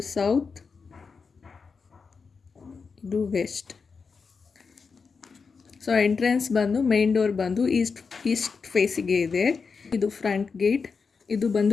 ಸೌತ್, ಇದು ವೆಸ್ಟ್. ಸೊ ಎಂಟ್ರೆನ್ಸ್ ಬಂದು ಮೇನ್ ಡೋರ್ ಬಂದು ಈಸ್ಟ್ ಫೇಸಿಗೆ ಇದೆ. ಇದು ಫ್ರಂಟ್ ಗೇಟ್, ಇದು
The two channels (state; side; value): quieter; right; 5.2 dB